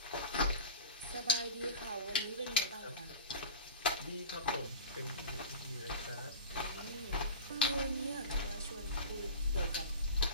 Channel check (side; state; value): both; inverted; correlation -0.33